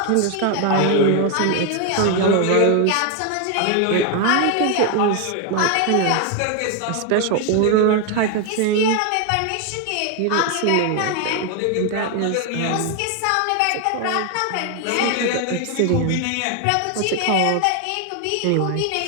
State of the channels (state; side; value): different; both; correlation 0.01